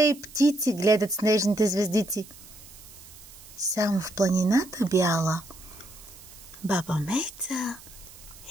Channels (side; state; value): right; noise; hiss, 19 dB below the sound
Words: и птици гледат снежните звездици. Само в планината бяла баба Меца